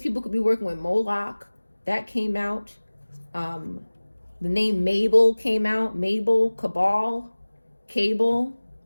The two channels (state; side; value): inverted; both; correlation -1.00